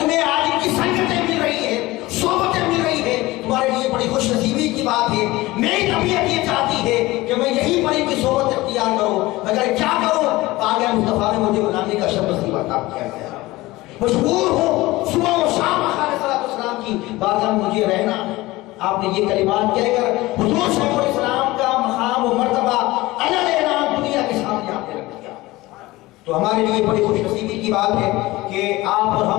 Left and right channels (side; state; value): right; quieter; 19.4 dB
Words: تمہیں آج ان کی سنگتیں مل رہی ہیں, صحبتیں مل رہی ہیں, تمہارے لیے بڑی خوش نصیبی کی بات ہے. میری طبیعت یہ چاہتی ہے کہ میں یہی پر ان کی صحبت اختیار کروں, مگر کیا کروں؟ پاک مصطفیٰ نے مجھے بنانے کا شرط نصیب عطا کیا ہے. مجبور ہوں صبح و شام آقا علیہ السلام کی بارگاہ میں مجھے رہنا. آپ نے یہ کلمات کہہ کر حضور شیخ الاسلام کا مقام و مرتبہ الگ اعلان دنیا کے سامنے آپ نے رکھ دیا. تو ہمارے لیے بڑی خوش نصیبی کی بات ہے کہ آپ اور